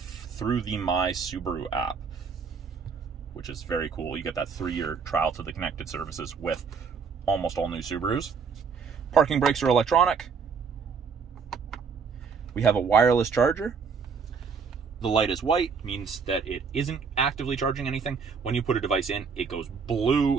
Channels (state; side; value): quieter; left; 5.7 dB